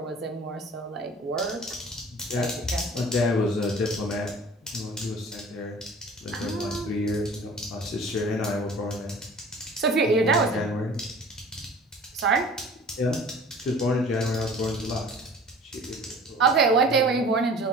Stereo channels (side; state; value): both; normal; correlation 0.45